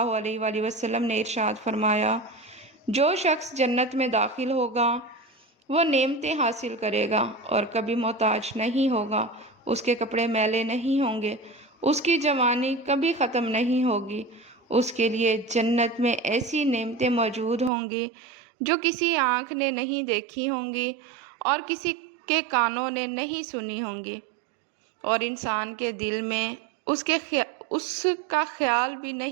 علیہ وآلہ وسلم نے ارشاد فرمایا، جو شخص جنت میں داخل ہوگا وہ نعمتیں حاصل کرے گا اور کبھی محتاج نہیں ہوگا، اس کے کپڑے میلے نہیں ہوں گے، اس کی جوانی کبھی ختم نہیں ہوگی، اس کے لیے جنت میں ایسی نعمتیں موجود ہوں گی جو کسی آنکھ نے نہیں دیکھی ہوں گی اور کسی کے کانوں نے نہیں سنی ہوں گی، اور انسان کے دل میں اس کا خیال بھی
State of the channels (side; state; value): left; drops out; at 17.7 s